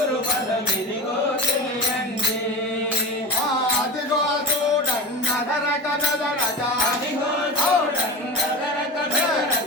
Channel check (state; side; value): normal; both; correlation 0.26